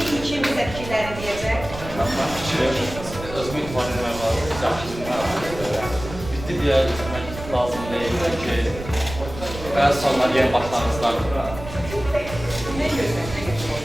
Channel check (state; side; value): noise; right; rumble, 11 dB below the sound